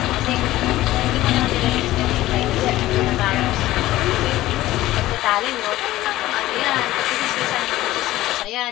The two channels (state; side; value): quieter; right; 16.0 dB